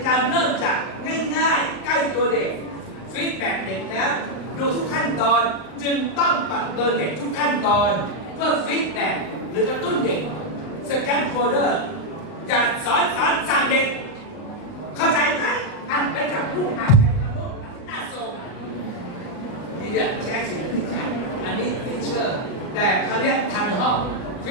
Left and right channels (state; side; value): late; right; 39 ms